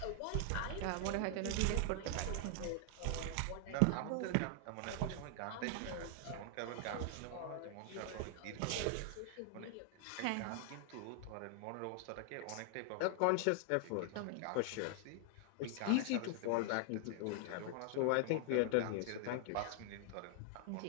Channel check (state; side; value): different; both; correlation 0.00